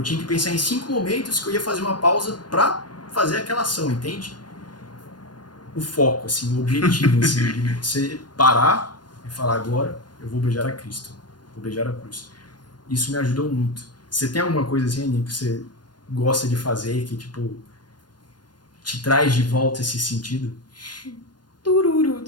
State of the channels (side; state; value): right; late; 0.70 ms